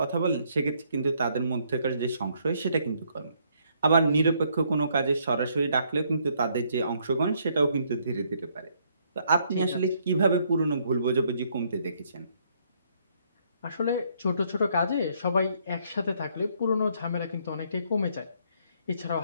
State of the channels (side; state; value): both; inverted; correlation -0.69